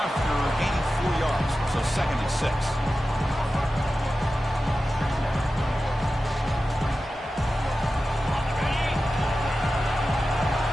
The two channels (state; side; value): normal; both; correlation 0.93